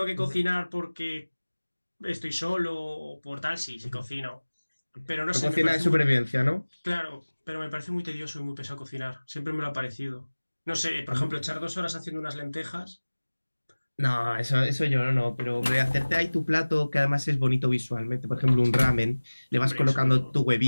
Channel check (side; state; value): both; inverted; correlation -1.00